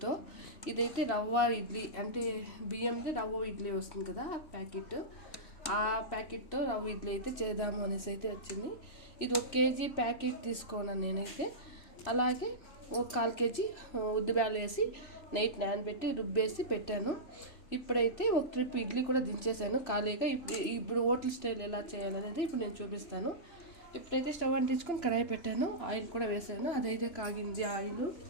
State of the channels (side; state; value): right; late; 3.0 ms